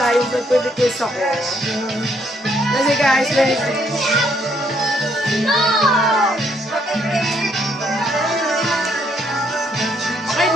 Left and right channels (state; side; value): normal; both; correlation 0.70